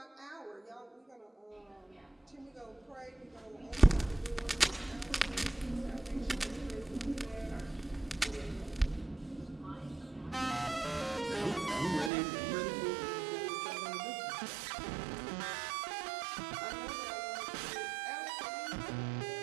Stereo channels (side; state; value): left; drops out; at 12.1 s